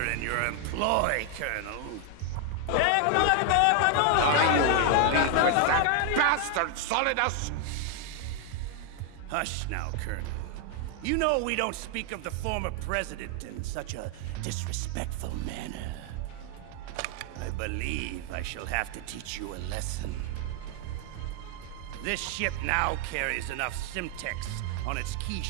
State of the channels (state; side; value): different; both; correlation 0.00